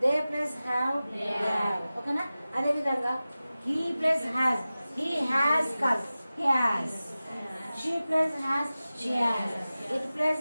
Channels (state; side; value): inverted; both; correlation -0.96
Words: they plus have, they have. ఓకేనా. అదే విధంగా he plus has, he has కాదు he has, she plus has, she has, it plus